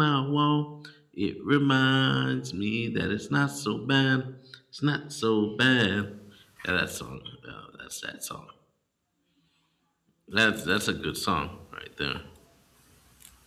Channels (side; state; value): both; identical; correlation 1.00